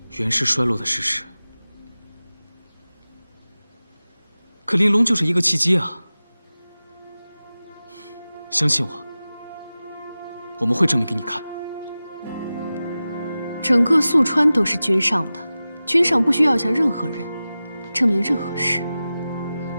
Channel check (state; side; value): inverted; both; correlation -0.96